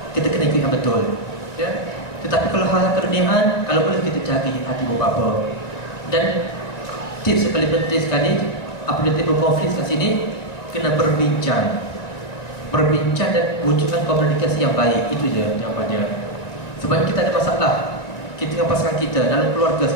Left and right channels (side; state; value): right; late; 1.9 ms